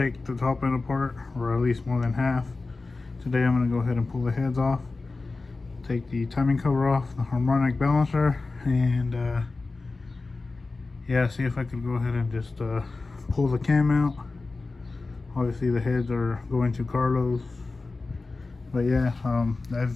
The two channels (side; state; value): right; quieter; 3.7 dB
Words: the top end apart, or at least more than half. Today I'm going to go ahead and pull the heads off, take the timing cover off, the harmonic balancer, and yeah, see if I could go ahead and just pull the cam out. Obviously the heads are going to Carlos, but yeah,